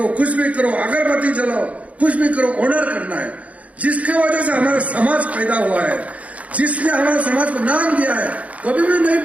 कुछ भी करो, अगरबत्ती जलाओ, कुछ भी करो, ऑनर करना है। जिसके वजह से हमारा समाज पैदा हुआ है, जिसने हमारे समाज को नाम दिया है, कभी भी नहीं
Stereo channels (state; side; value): late; left; 0.067 ms